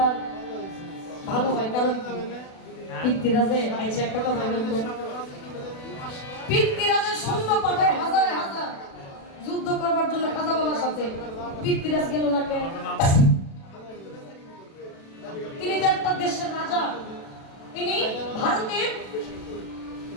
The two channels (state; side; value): late; right; 36 ms